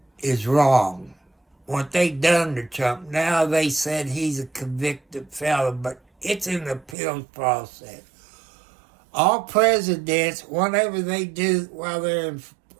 is wrong. What they done to Trump, now they said he's a convicted felon, but it's an appeals process. All presidents, whatever they do while they're in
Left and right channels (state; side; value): drops out; left; at 7.0 s